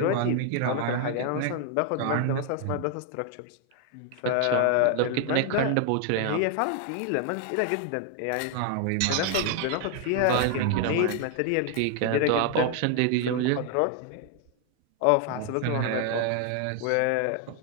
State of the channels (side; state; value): both; different; correlation 0.00